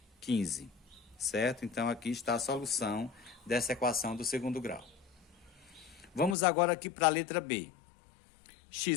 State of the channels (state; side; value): drops out; right; at 6.4 s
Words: 15. Certo? Então, aqui está a solução dessa equação do segundo grau. Vamos agora aqui para a letra B.